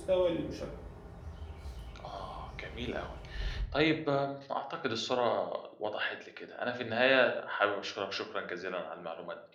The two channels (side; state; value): both; identical; correlation 1.00